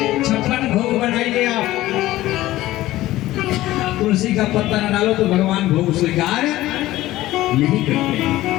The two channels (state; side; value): quieter; right; 16.1 dB